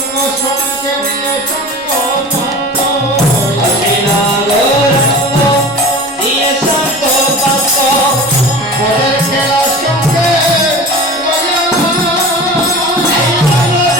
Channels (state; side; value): normal; both; correlation 0.36